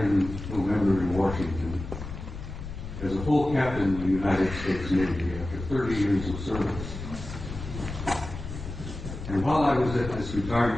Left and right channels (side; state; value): left; noise; rumble, 9 dB below the sound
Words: in November in Washington as a full captain in the United States Navy after 30 years of service. And while I was at this